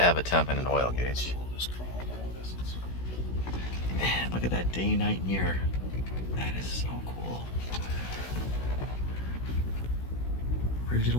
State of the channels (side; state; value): right; late; 16 ms